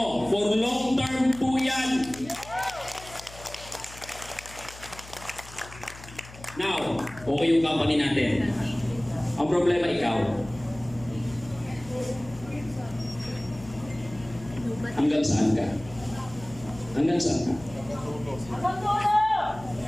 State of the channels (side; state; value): left; noise; hum, 18 dB below the sound